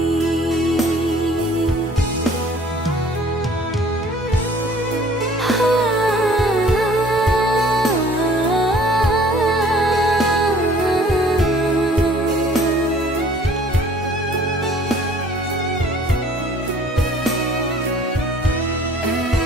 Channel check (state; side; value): normal; both; correlation 0.54